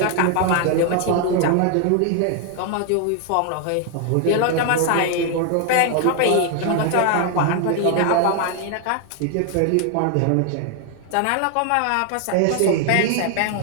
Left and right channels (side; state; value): both; different; correlation 0.00